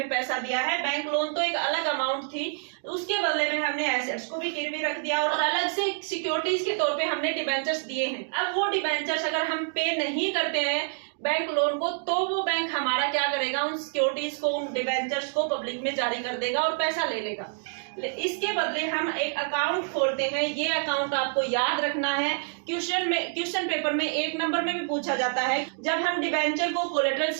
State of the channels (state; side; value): silent; left; digital silence